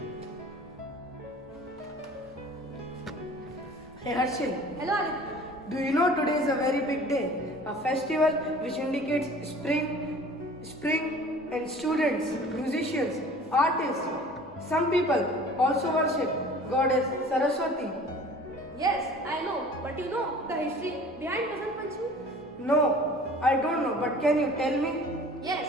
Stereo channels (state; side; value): normal; both; correlation 0.46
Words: Hey Harshil, Hello Aditya. do you know today is a very big day? A festival which indicates spring and students, musicians, artists. Some people also worship Goddess Saraswati. Yes, I know, but you know the history behind Vasant Panchami? No, I don't know, but can you tell me? Yes,